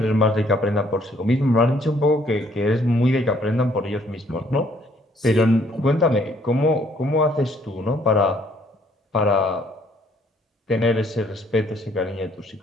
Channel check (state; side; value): normal; both; correlation 0.65